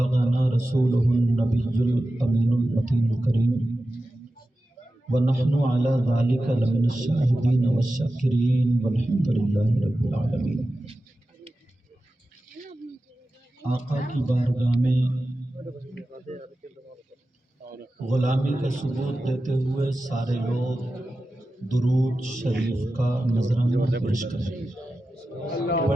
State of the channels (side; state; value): both; normal; correlation 0.93